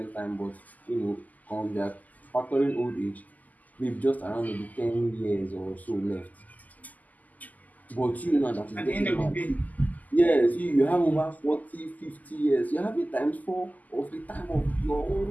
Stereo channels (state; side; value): late; right; 0.080 ms